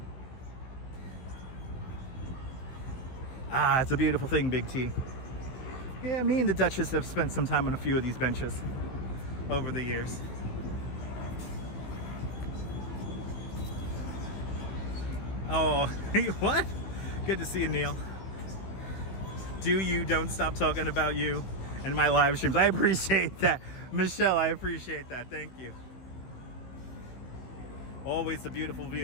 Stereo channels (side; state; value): right; late; 15 ms